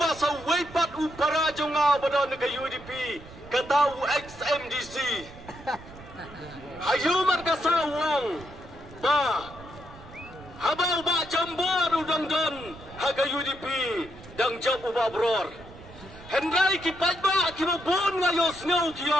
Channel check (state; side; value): noise; right; rumble, 18 dB below the sound